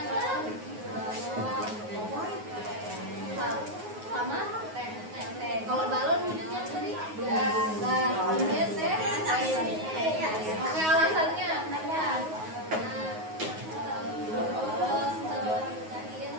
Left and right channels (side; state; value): left; late; 9.4 ms